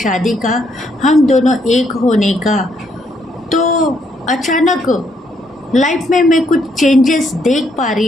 का, हम दोनों एक होने का, तो अचानक लाइफ में मैं कुछ चेंजेस देख पा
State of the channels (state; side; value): normal; both; correlation 0.73